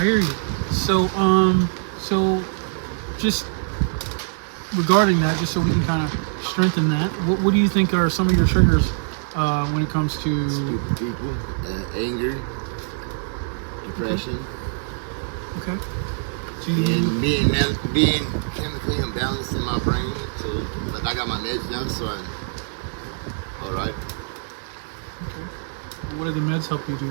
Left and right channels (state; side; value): silent; left; digital silence